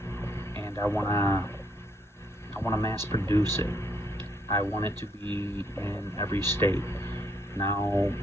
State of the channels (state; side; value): normal; both; correlation 0.71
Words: and I want to mass produce it. I want it to be in every state. Now,